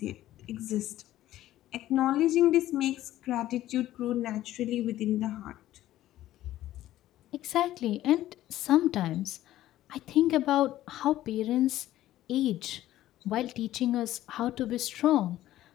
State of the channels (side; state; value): right; quieter; 14.1 dB